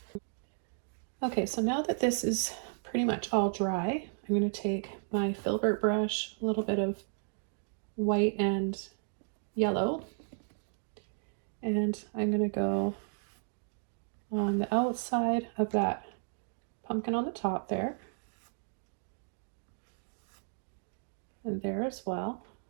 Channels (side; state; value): left; silent; digital silence